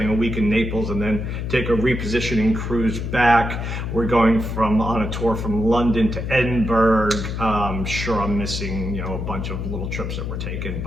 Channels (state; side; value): noise; left; hum, 4 dB below the sound